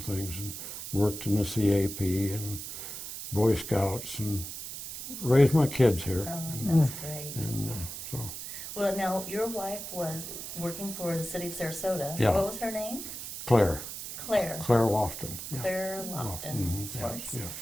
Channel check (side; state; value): right; noise; hiss, 8 dB below the sound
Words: things, and worked in the CAP and Boy Scouts, and raised my kids here. Oh, that's great. And so. Well, now, your wife was working for the city of Sarasota. Yeah. What was her name? Claire Claire. Lofton. Yeah. Claire Lofton. Mhm, Swartz.